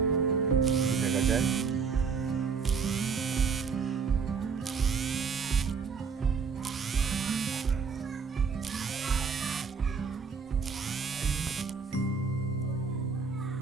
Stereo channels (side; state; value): left; quieter; 5.6 dB